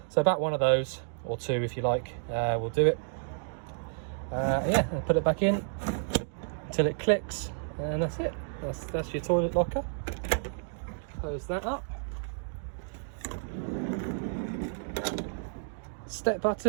So about one of those, or two if you like, will do it. Yeah, and put it back in until it clicks, and that's it. That's your toilet locker. Close that up. Step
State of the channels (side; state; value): left; silent; digital silence